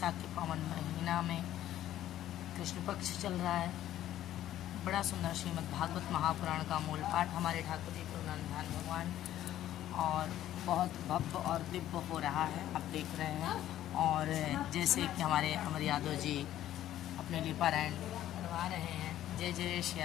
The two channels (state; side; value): quieter; right; 12.7 dB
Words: के पावन महीना में कृष्ण पक्ष चल रहा है। बड़ा सुंदर श्रीमद् भागवत महापुराण का मूल पाठ हमारे ठाकुर जी गुरुनंदन भगवान और बहुत भव्य और दिव्य हो रहा है, आप देख रहे हैं। और जैसे कि हमारे अमर यादव जी अपने लिए पारायण करवा रहे हैं। जय जय श्री